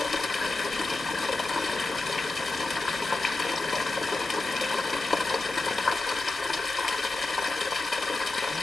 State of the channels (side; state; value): right; quieter; 3.1 dB